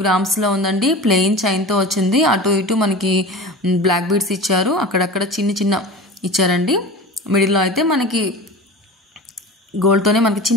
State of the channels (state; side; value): normal; both; correlation 0.33